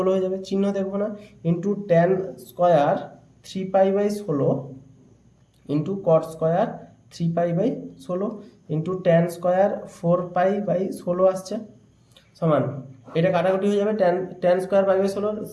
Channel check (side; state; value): both; identical; correlation 1.00